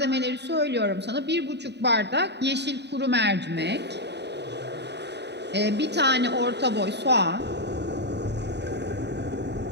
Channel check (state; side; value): late; left; 0.50 ms